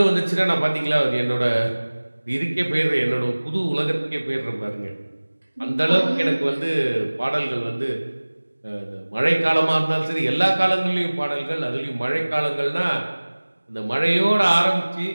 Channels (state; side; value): inverted; both; correlation -1.00